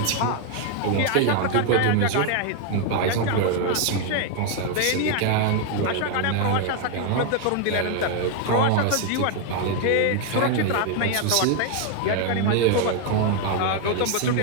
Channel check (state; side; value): different; both; correlation 0.00